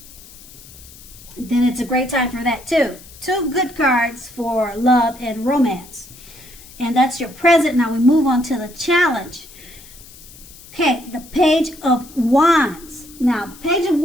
then it's a great time for that too. Two good cards for love and romance. And that's your present. Now we move on to the challenge. Okay, the Page of Wands. Now, the Page of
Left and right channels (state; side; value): noise; left; hiss, 20 dB below the sound